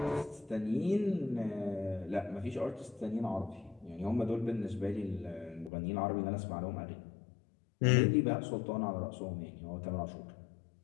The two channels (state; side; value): drops out; right; at 5.7 s